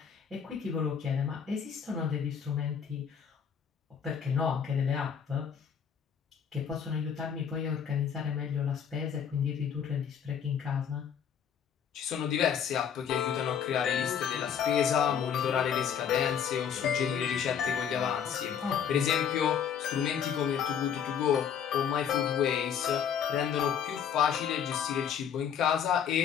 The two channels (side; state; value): right; quieter; 7.9 dB